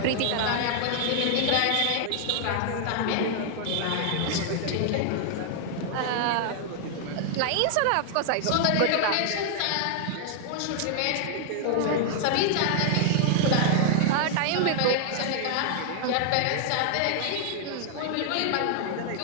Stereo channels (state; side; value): different; both; correlation 0.00